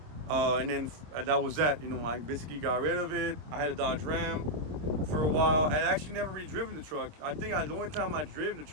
And then that was that, I basically got rid of it. I had a Dodge Ram for a while. I actually never really driven the truck. I think the only time I driven the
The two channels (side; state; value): left; late; 26 ms